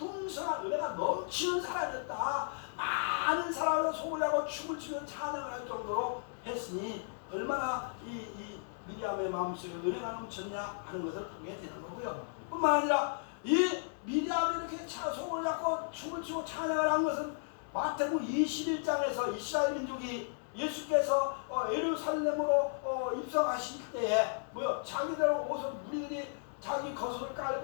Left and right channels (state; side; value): silent; right; 55 dB below the other